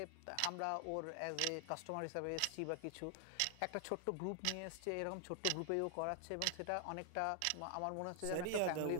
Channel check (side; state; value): both; different; correlation 0.00